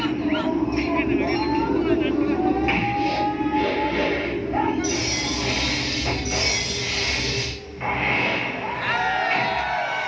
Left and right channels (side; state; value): both; identical; correlation 1.00